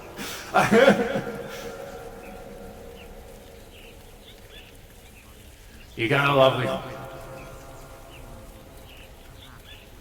You got a lovely home.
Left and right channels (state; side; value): identical; both; correlation 1.00